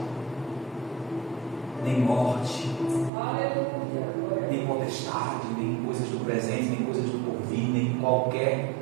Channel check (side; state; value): left; drops out; at 3.1 s